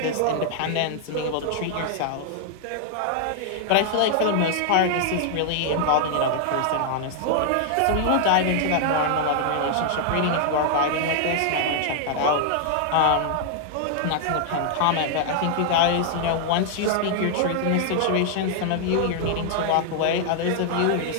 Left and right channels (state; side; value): different; both; correlation 0.00